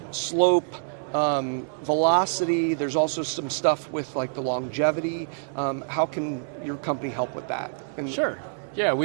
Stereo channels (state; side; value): silent; left; digital silence